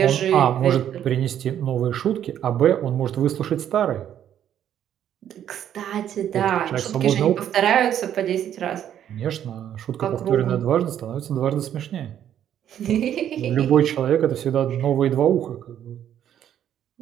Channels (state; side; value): quieter; left; 10.3 dB